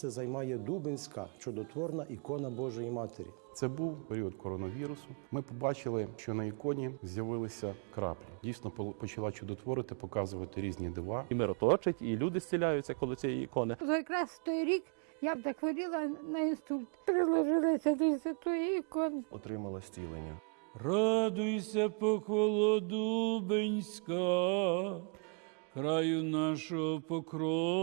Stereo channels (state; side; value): quieter; left; 39.3 dB